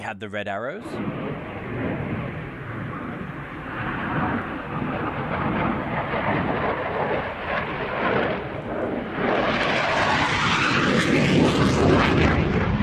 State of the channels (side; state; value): both; identical; correlation 1.00